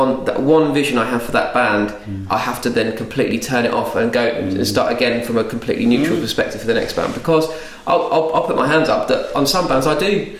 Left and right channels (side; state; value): both; identical; correlation 1.00